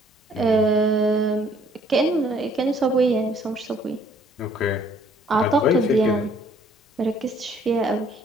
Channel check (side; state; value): both; normal; correlation 0.61